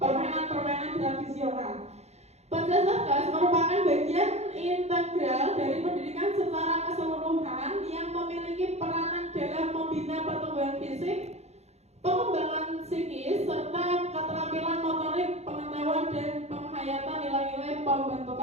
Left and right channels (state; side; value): late; left; 0.31 ms